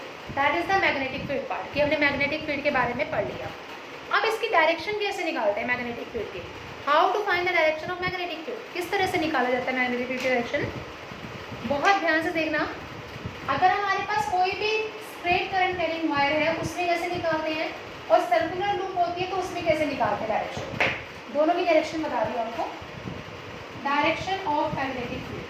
That is the magnetic field part, कि हमने मैग्नेटिक फील्ड के बारे में पढ़ लिया। अब इसकी डायरेक्शन कैसे निकालते हैं मैग्नेटिक फील्ड की? How to find the direction of magnetic field? किस तरह से निकाला जाता है मैग्नेटिक फील्ड की डायरेक्शन? बहुत ध्यान से देखना। अगर हमारे पास कोई भी स्ट्रेट करंट कैरिंग वायर है उसमें कैसे निकालते हैं, और सर्कुलर लूप होती है तो उसमें कैसे निकालते हैं डायरेक्शन? दोनों की डायरेक्शन बता दी आपको। Direction of magnetic field,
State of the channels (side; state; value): both; identical; correlation 1.00